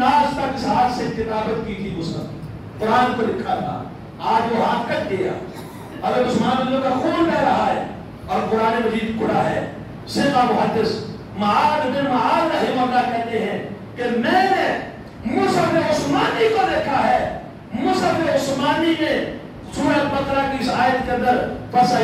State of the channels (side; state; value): both; identical; correlation 1.00